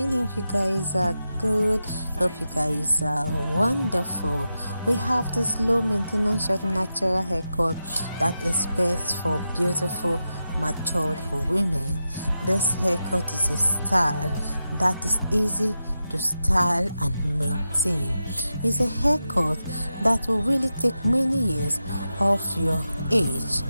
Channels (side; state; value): both; inverted; correlation -0.89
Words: Hope you guys are good. Hope you guys are wonderful. We have this low maintenance short natural haircut that is best for beautiful matured women. This haircut is a style that is easy to style and maintain. It's a haircut that will really take many years off your age.